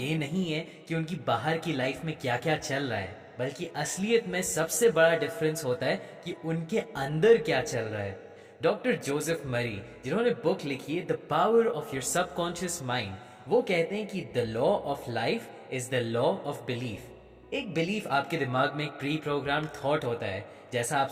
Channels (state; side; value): identical; both; correlation 1.00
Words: नहीं है कि उनकी बाहर की लाइफ में क्या क्या चल रहा है, बल्कि असलियत में सबसे बड़ा डिफरेंस होता है कि उनके अंदर क्या चल रहा है। डॉक्टर जोसेफ मरी, जिन्होंने बुक लिखी है the power of your subconscious mind, वो कहते हैं कि the law of life is the law of belief. एक बिलीफ आपके दिमाग में एक प्री प्रोग्राम थॉट होता है। जैसा आप